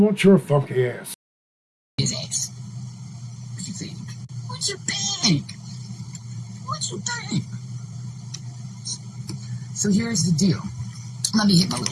your funky ass? His ass. What you think? What you think? What you think? So here's the deal. Let me hit my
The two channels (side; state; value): both; identical; correlation 1.00